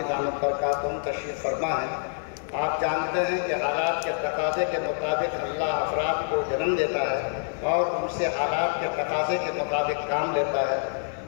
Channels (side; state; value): right; silent; 58 dB below the other